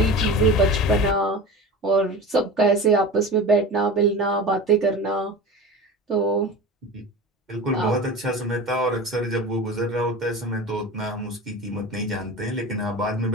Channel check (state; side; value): normal; both; correlation 0.32